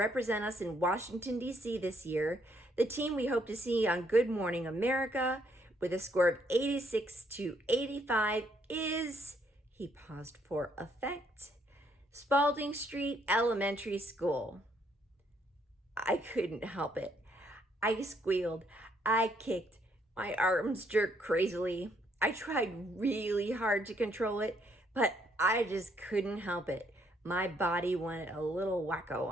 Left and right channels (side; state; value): both; normal; correlation 0.70